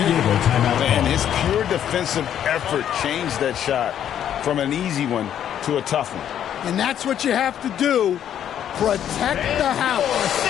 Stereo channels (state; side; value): quieter; right; 10.0 dB